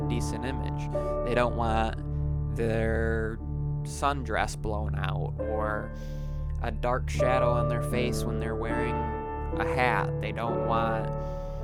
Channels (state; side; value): identical; both; correlation 1.00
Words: image. They don't want their sundress blown out or a dark shadow on their face when they're wearing a hat. They don't want